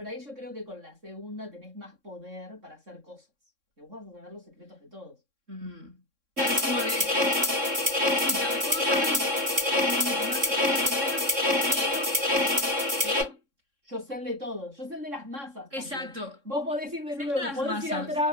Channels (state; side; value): late; left; 3.6 ms